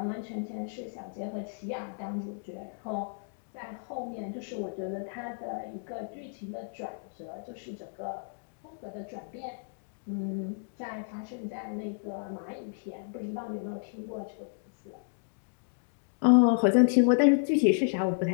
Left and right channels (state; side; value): silent; right; digital silence